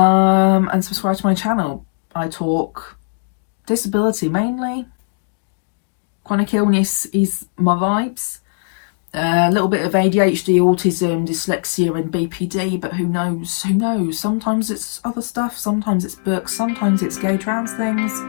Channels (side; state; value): right; silent; digital silence